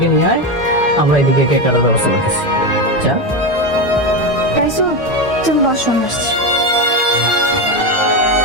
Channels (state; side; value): normal; both; correlation 0.15